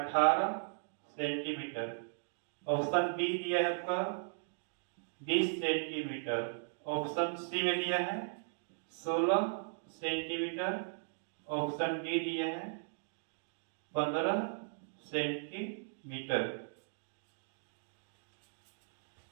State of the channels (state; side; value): silent; left; digital silence